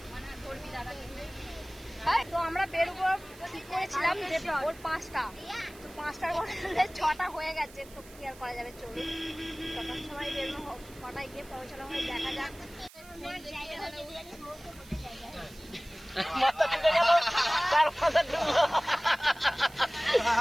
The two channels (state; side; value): noise; right; hiss, 21 dB below the sound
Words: তো আমরা বেরোবো ঠিক করেছিলাম যে ভোর 5টা, তো 5টার বদলে 6টা হয়ে গেছে। তো কি আর করা যাবে, চলুন তখন সময় বেরোনো, 6টায় গিয়ে পৌঁছানো হয়, দেখা যাক। মাথা ঢুকে গেল, তার মাথা ঢুকলো,